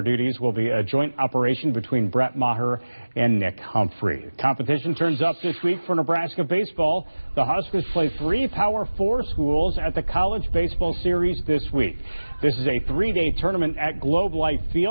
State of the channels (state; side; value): inverted; both; correlation -1.00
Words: duties will be a joint operation between Brett Maher and Nick Humphrey. Competition turns up this week for Nebraska baseball. The Huskers play 3 Power 4 schools at the College Baseball Series this week. This is a 3-day tournament at Globe Life